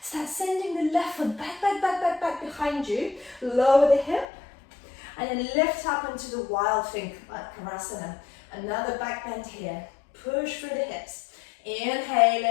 Start sending the left foot back behind you. Lower the hip. And then lift up into the wild thing, Karasana. Another back bend here. Push through the hips.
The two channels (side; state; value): right; drops out; at 4.2 s